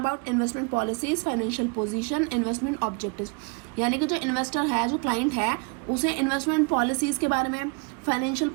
investment policies, financial position, investment objectives. यानी कि जो इन्वेस्टर है, जो क्लाइंट है, उसे इन्वेस्टमेंट पॉलिसीज के बारे में, फाइनेंशियल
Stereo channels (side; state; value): left; quieter; 31.5 dB